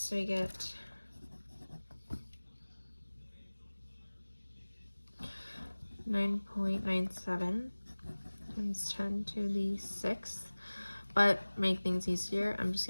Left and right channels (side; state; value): both; inverted; correlation -1.00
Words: we get 9.97 times 10 to the 6th. But make things easier, I'm just